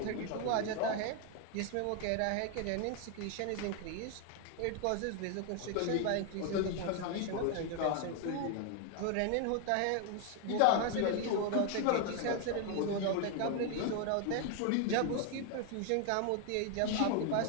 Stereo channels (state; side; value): different; both; correlation 0.00